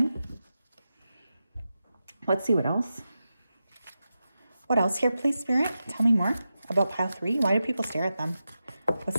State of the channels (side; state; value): both; inverted; correlation -0.91